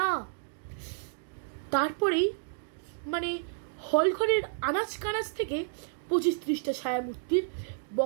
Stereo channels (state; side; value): silent; left; digital silence